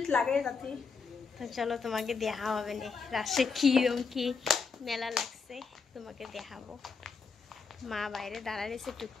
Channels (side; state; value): right; quieter; 5.2 dB